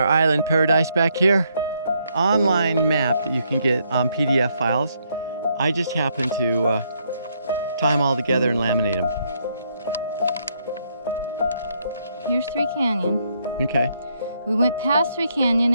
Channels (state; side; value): inverted; both; correlation -0.74